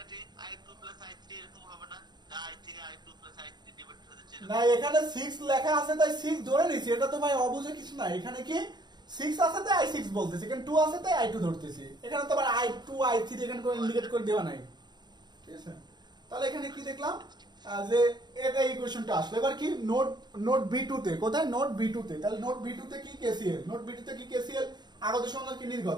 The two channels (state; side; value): late; left; 0.21 ms